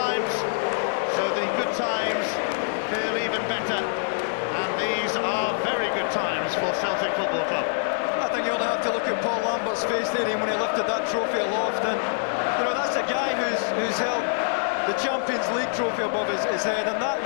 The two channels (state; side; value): silent; right; 62 dB below the other